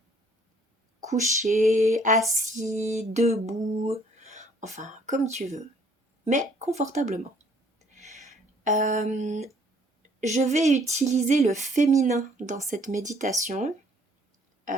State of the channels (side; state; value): both; normal; correlation 0.61